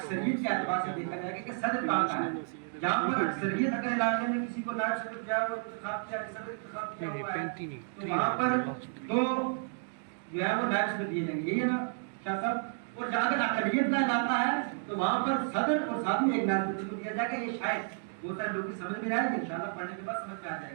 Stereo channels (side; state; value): left; silent; digital silence